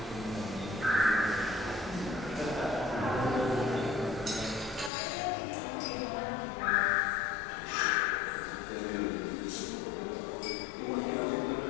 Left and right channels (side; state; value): right; drops out; at 4.9 s